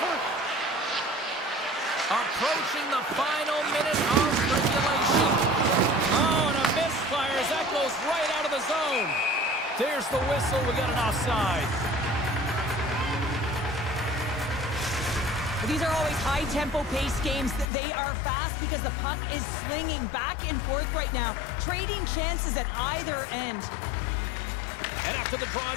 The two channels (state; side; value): drops out; right; at 17.7 s